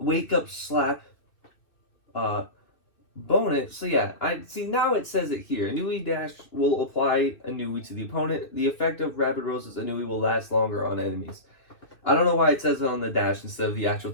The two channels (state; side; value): late; right; 2.6 ms